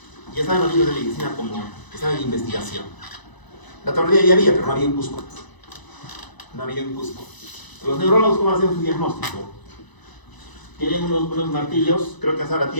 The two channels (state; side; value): late; right; 1.0 ms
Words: Ya estaban los libros de medicina como que estaban en investigación. La tomografía ya había, pero no había en Cusco. No había en Cusco. Los neurólogos, ¿cómo hacen su diagnóstico? Tienen unos martillos, creo que hasta ahora